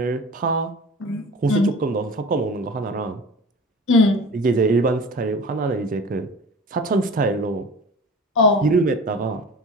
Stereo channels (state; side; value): normal; both; correlation 0.38